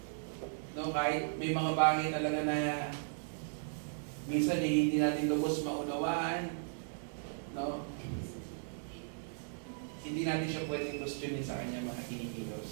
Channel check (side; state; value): left; silent; digital silence